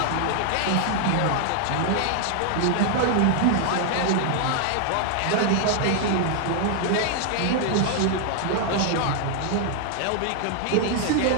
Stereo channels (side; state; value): both; different; correlation 0.00